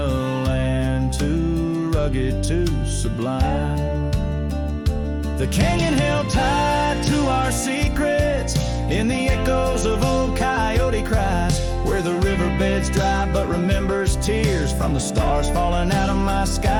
land too rugged, too sublime. The canyon held tight to our secrets in the echoes of old coyote cries, where the riverbed's dry but remembers tears from the stars falling out of my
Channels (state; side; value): identical; both; correlation 1.00